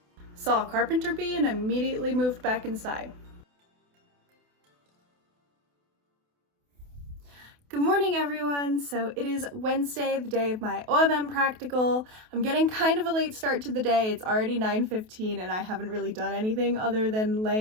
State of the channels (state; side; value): late; left; 28 ms